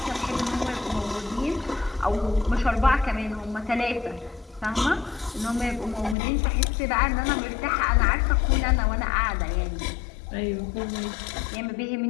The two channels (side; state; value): right; drops out; at 6.2 s